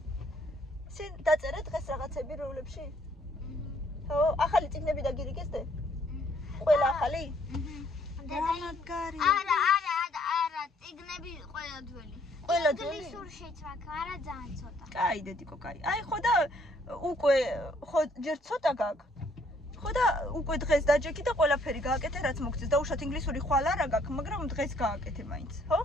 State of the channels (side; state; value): both; normal; correlation 0.65